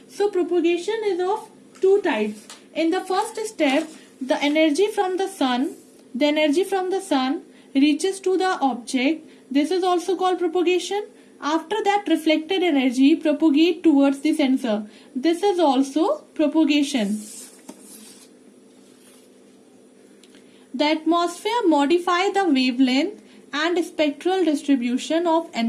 So propagation is of two types. In the first step, the energy from the sun reaches to the object. This is also called propagation. After that, reflected energy propagate towards the sensor. This is also propagation. The atmosphere modify the wavelength and spectral distribution of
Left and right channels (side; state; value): both; identical; correlation 1.00